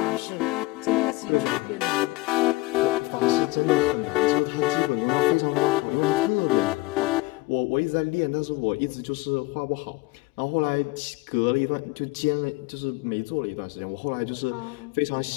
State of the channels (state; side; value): quieter; right; 22.1 dB